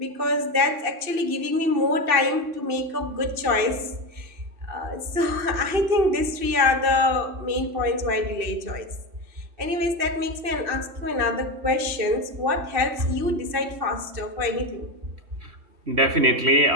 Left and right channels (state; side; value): late; left; 2.7 ms